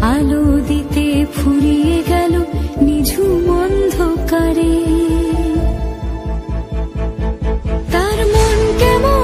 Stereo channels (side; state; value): both; identical; correlation 1.00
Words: আলো দিতে ফুরিয়ে গেল নিঝুম অন্ধকারে। তার মন